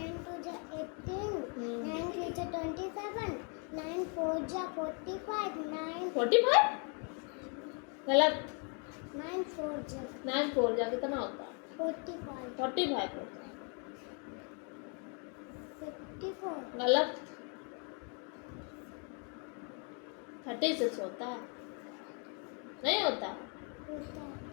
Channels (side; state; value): right; quieter; 38.0 dB